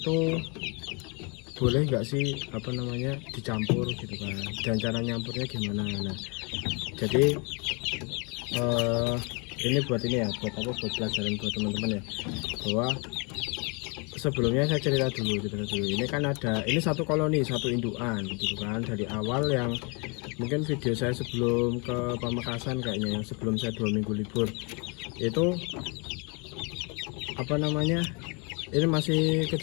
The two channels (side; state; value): right; quieter; 32.5 dB